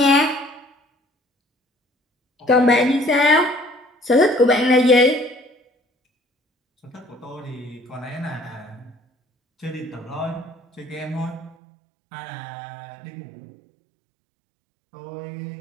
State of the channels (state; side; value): drops out; left; at 11.6 s